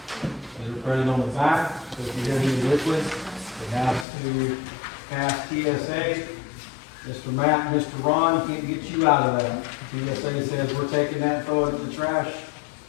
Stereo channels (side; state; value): right; drops out; at 4.0 s